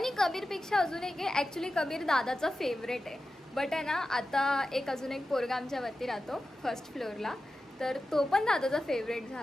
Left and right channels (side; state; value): both; normal; correlation 0.92